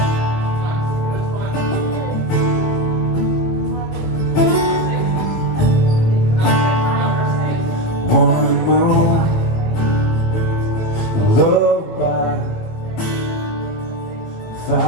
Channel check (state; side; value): late; right; 18 ms